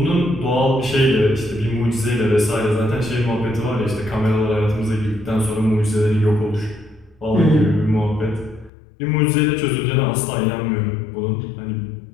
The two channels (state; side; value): drops out; right; at 8.7 s